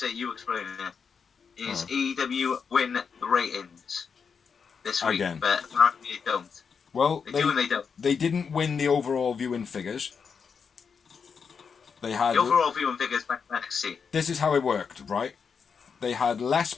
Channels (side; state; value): right; quieter; 6.1 dB